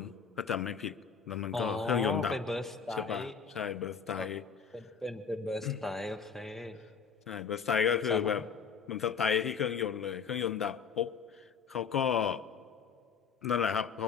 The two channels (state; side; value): quieter; right; 6.4 dB